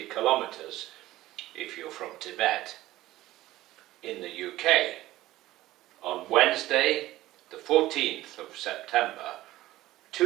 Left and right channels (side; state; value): left; quieter; 16.1 dB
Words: kilometres if you're from Tibet, in the UK, on Wednesday, the 14th of September